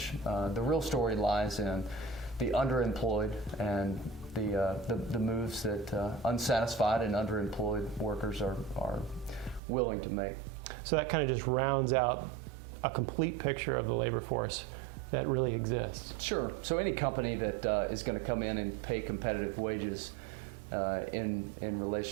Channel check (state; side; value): drops out; left; at 9.6 s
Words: The real story lies in the underemployed and the moves that unsatisfied and underemployed workers are willing to make. So that kind of just rounds out a complete picture of the labor force that really exists. Sure. So any company that is going to come in and pay competitive wages in